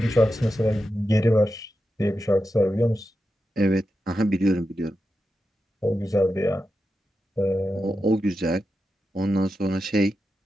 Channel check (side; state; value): both; normal; correlation 0.89